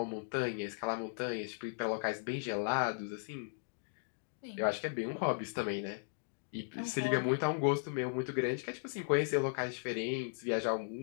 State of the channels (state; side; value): silent; right; digital silence